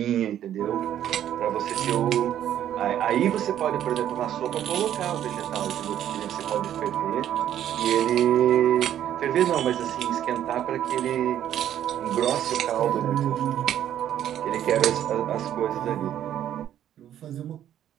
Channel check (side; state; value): left; quieter; 11.0 dB